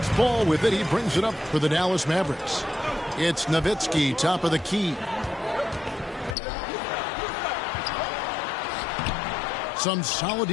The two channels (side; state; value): right; drops out; at 6.4 s